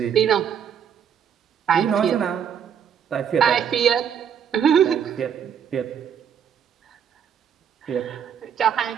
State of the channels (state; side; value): quieter; left; 8.2 dB